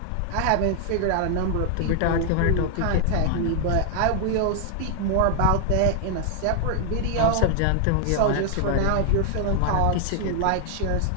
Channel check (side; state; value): both; different; correlation 0.00